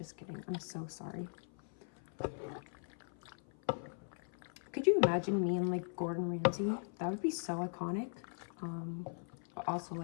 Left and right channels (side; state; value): right; silent; 51 dB below the other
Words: kidding. I'm so sorry. Could you imagine me and like Gordon Ramsay? That would be so iconic. But also